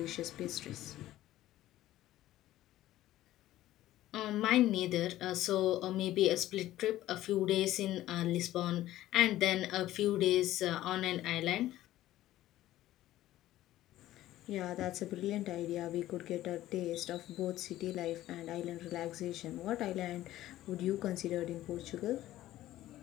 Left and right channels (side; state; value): right; quieter; 14.6 dB